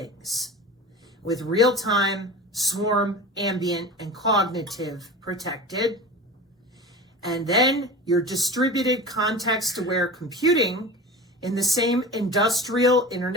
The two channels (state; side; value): normal; both; correlation 0.33